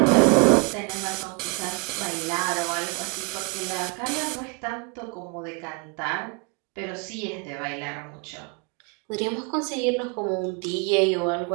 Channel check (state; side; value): quieter; left; 33.8 dB